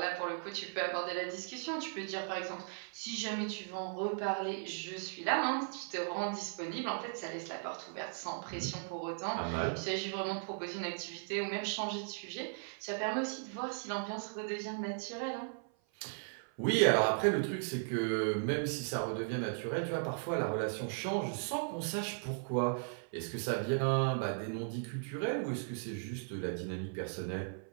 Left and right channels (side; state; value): left; silent; 53 dB below the other